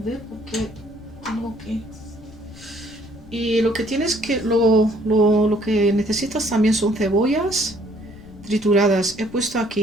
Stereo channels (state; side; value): noise; left; rumble, 21 dB below the sound